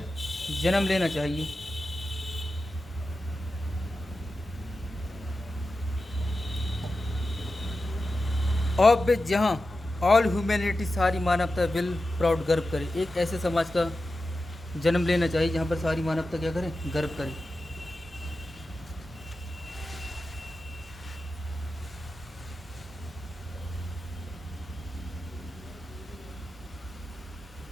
जन्म लेना चाहिए। ऑफ विच, जहाँ ऑल ह्यूमैनिटी, सारी मानवता विल प्राउड, गर्व करे। एक ऐसे समाज का जन्म लेना चाहिए जहाँ पर सारी मानवता क्या करे, गर्व करे।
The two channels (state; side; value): normal; both; correlation 0.92